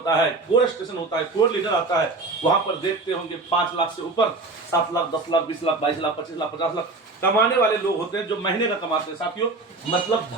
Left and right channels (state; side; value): quieter; left; 3.4 dB